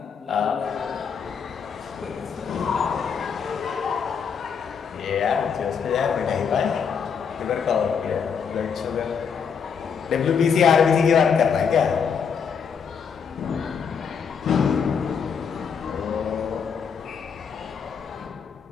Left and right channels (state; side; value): quieter; right; 6.6 dB